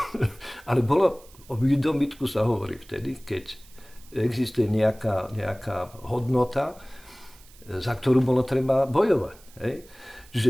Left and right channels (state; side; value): noise; right; hiss, 25 dB below the sound